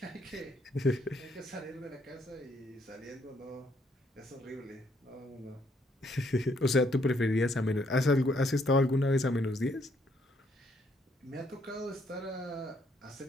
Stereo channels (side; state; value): both; normal; correlation 0.70